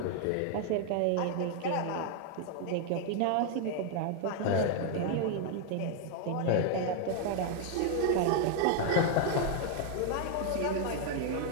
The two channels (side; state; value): both; different; correlation 0.00